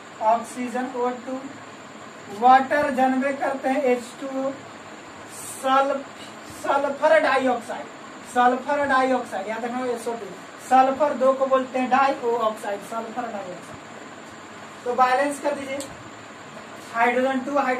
ऑक्सीजन O2, वाटर जनबे करते हैं H2O, sulphur dioxide, sulphur dioxide याद रखना SO2, सल्फर 2 को बोलते हैं डाई ऑक्साइड, सल्फर डाइऑक्साइड। तो बैलेंस कर दीजिए, हाइड्रोजन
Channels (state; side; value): identical; both; correlation 1.00